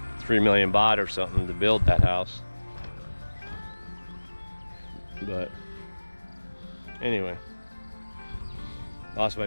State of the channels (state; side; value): inverted; both; correlation -1.00